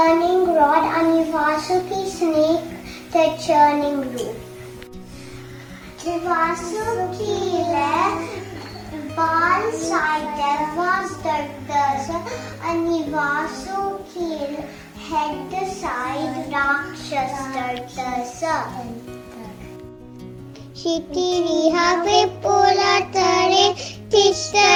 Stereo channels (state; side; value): identical; both; correlation 1.00